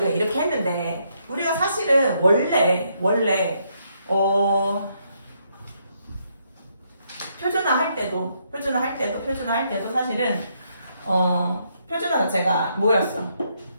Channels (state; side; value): inverted; both; correlation -0.75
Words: 이렇게 했는데 우리가 사실은 원래 표준화 할 때도 사실은 표준화 자체가 뭐였어?